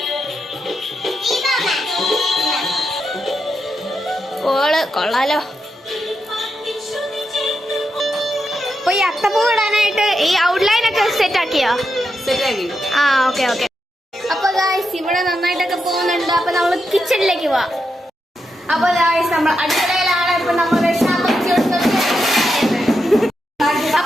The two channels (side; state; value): both; normal; correlation 0.85